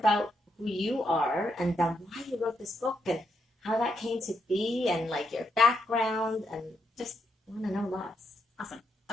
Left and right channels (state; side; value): normal; both; correlation 0.80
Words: who you are and then why you wrote this book and how that came to be and like your background, and just want to know lots. Awesome.